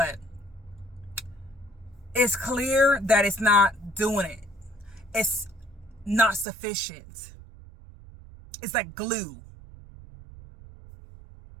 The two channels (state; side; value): drops out; left; at 6.5 s